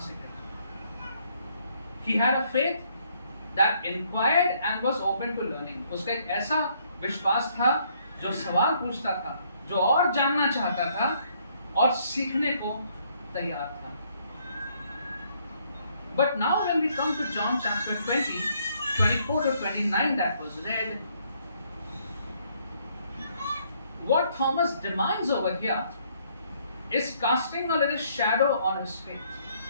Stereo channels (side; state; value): both; inverted; correlation -0.68